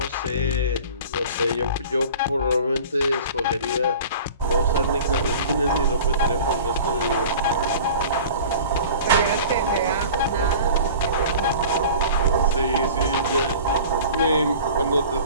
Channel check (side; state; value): both; inverted; correlation -0.41